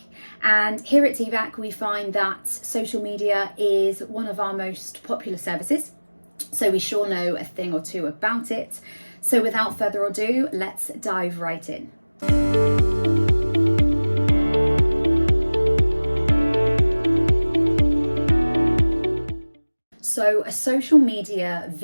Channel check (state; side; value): inverted; both; correlation -1.00